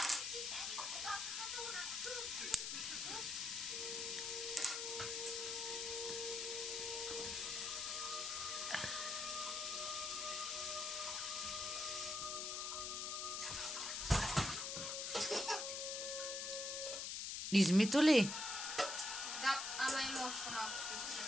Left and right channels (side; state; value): left; noise; hiss, 2 dB below the sound